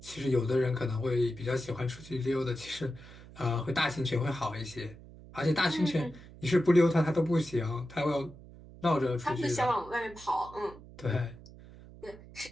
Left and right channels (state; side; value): noise; right; hum, 18 dB below the sound